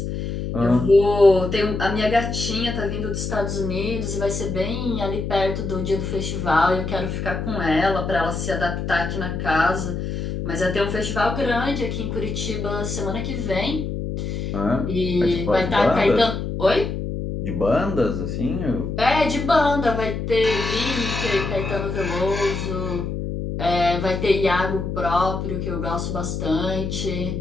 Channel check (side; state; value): left; noise; hum, 4 dB below the sound